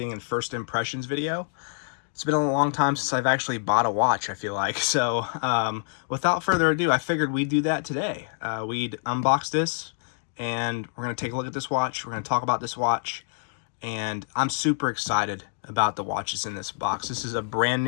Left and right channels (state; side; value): silent; right; digital silence